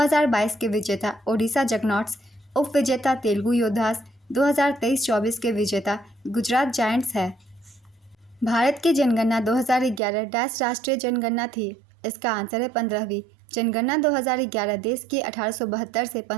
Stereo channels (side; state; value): left; drops out; at 10.0 s